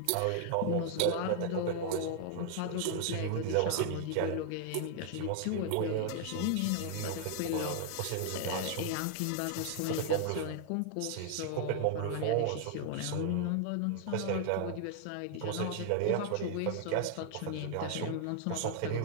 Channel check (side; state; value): both; different; correlation 0.00